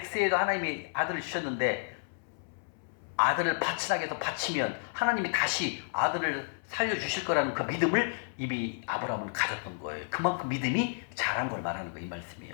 하나님이 아들을 주셨는데 아들을 바치라고 해서 바치면 하나님이 다시 아들을 살려주실 거라는 그 믿음을 이미 아브라함은 가졌던 거예요. 그만큼 믿음이 자란 걸 말하는 거예요. 이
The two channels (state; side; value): silent; right; 57 dB below the other